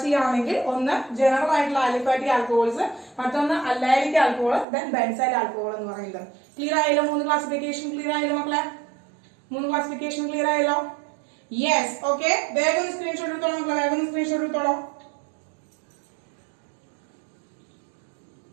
ചെയ്യുകയാണെങ്കിൽ ഒന്ന് ജനറൽ ആയിട്ടുള്ള ആലിഫാറ്റിക് ആൽക്കഹോൾസ്, മറ്റൊന്ന് അല്ലൈലിക് ആൽക്കഹോൾ, ദെൻ ബെൻസൈൽ ആൽക്കഹോൾ എന്ന് പറയുന്നത്. ക്ലിയർ ആയല്ലോ? 3 ക്ലാസിഫിക്കേഷൻ ക്ലിയർ ആയല്ലോ മക്കളെ? 3 ക്ലാസിഫിക്കേഷൻ ക്ലിയർ ആയല്ലോ? Yes, okay. വേഗം സ്ക്രീൻഷോട്ട് എടുത്തോളൂ മക്കളെ, വേഗം സ്ക്രീൻഷോട്ട് എടുത്തോളൂ.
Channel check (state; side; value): drops out; left; at 4.7 s